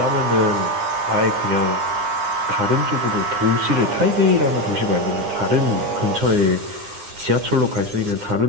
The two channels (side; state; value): left; late; 9.8 ms